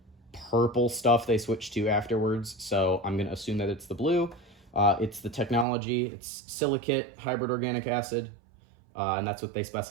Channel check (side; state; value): left; drops out; at 5.7 s